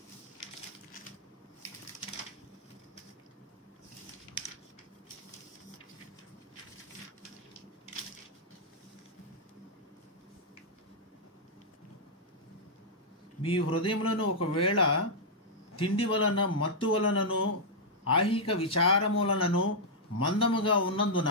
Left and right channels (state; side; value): normal; both; correlation -0.07